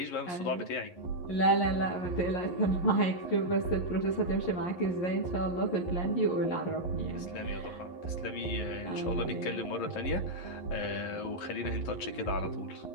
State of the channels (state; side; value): late; right; 11 ms